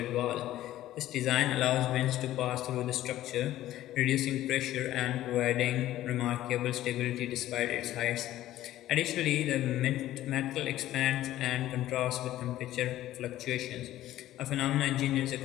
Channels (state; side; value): quieter; right; 14.1 dB